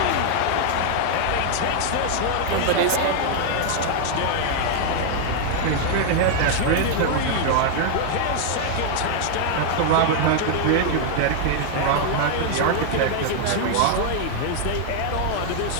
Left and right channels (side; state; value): both; different; correlation 0.00